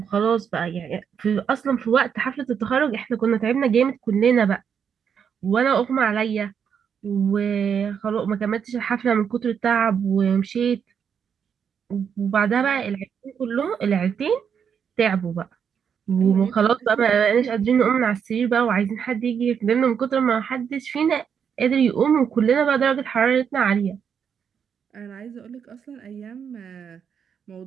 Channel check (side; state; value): left; quieter; 7.4 dB